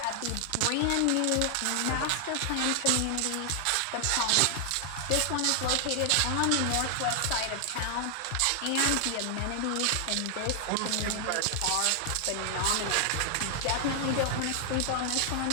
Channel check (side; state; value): both; different; correlation 0.00